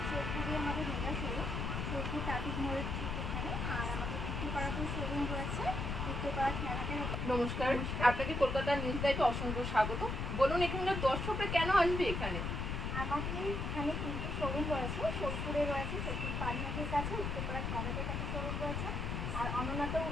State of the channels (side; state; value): left; noise; rumble, 2 dB below the sound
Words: সোদপুরে আমাদের মেগা শোরুম, সোদপুর ট্রাফিক মোড়ের ঠিক এখানে, আর আমাদের উত্তরপাড়াতেও শোরুম রয়েছে, উত্তরপাড়া খেলাঘাটের। নমস্কার, আপনাকে কলকাতা নিউজ লাইভে অসংখ্য স্বাগত। বলুন এখানকার দর্শকরা কেন আসবে এখানে? আমাদের এখানে তিনটে শোরুম রয়েছে, সোদপুরে রয়েছে, সোদপুর পানিহাটের কাছে, উত্তরপাড়া খেলাঘাটের কাছে শোরুম রয়েছে, আর অনন্যাতেও